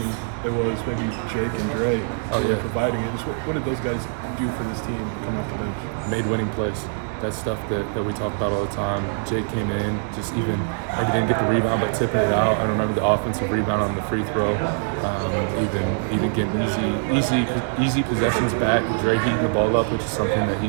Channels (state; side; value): silent; left; 59 dB below the other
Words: it was maybe Jake and Dre providing it. Just what did those guys do for this team coming off the bench? Made winning plays. That's stuff that we talk about all the time. Jake came in, just even maybe didn't get the rebound, but tipping it out. I remember the offensive rebound on the free throw, even getting easy possessions back. Dre heating the ball up, which is something that